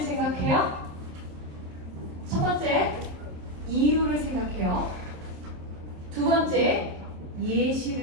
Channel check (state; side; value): late; left; 27 ms